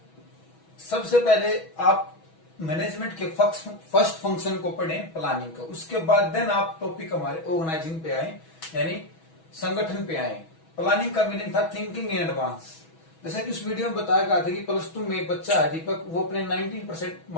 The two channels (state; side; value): late; right; 6.2 ms